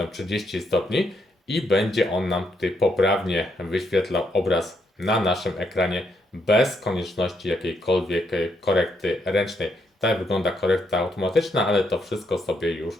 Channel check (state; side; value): normal; both; correlation 0.76